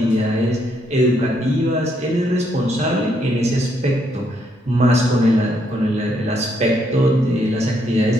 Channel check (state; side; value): normal; both; correlation 0.74